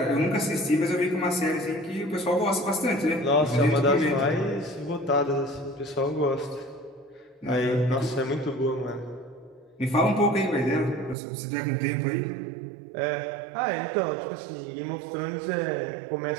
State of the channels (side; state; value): left; drops out; at 11.2 s